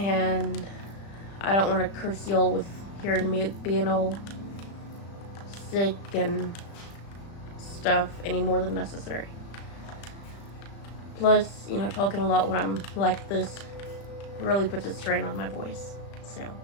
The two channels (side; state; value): right; late; 35 ms